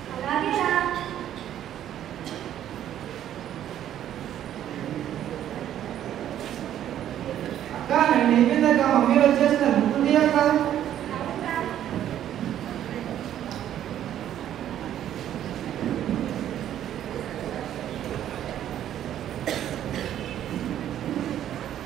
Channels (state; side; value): quieter; left; 11.1 dB